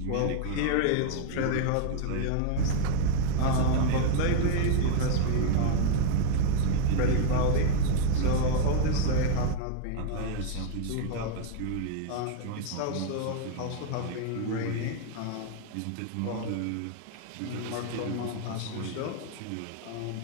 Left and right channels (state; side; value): different; both; correlation 0.01